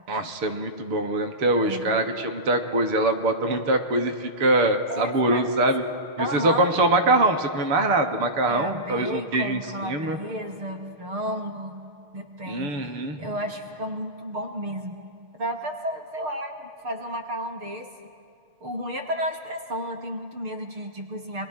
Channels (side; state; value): left; late; 6.5 ms